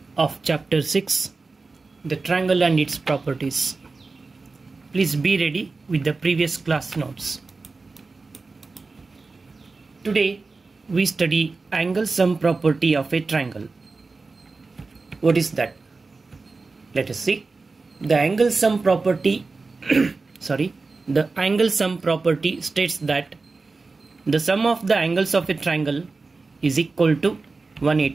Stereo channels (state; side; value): quieter; left; 3.9 dB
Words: of chapter 6, the triangle and its properties. Please be ready with the previous class notes. Today we study angle sum property of a triangle. What is that? Let us see. The angle sum property the angle sum property states that the sum of the angles of a triangle is equal to